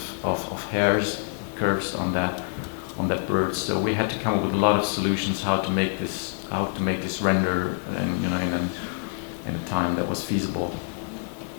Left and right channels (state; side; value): silent; right; 55 dB below the other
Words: of hairs, curves on that bird. So we had to come up with a lot of solutions how to make this render in a time that was feasible.